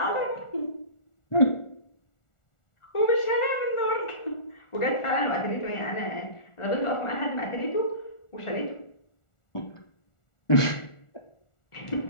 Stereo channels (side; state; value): right; late; 1.4 ms